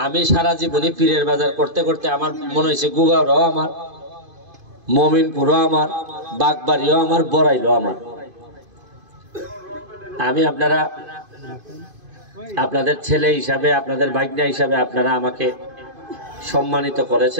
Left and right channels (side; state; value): left; late; 2.5 ms